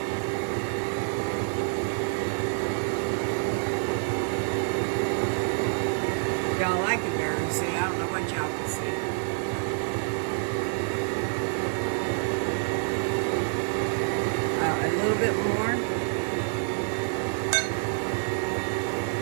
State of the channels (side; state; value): left; silent; 60 dB below the other